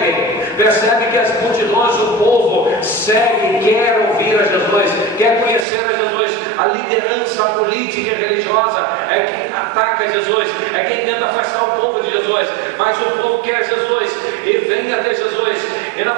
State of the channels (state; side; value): drops out; left; at 5.7 s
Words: Percebe que as multidões, o povo, segue, quer ouvir a Jesus, quer conhecer a Jesus. A liderança política e religiosa é quem ataca Jesus, é quem tenta afastar o povo de Jesus. Mas o povo quer Jesus e vem até Jesus. E nós